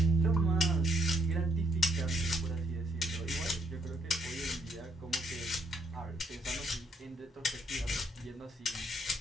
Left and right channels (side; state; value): both; normal; correlation 0.72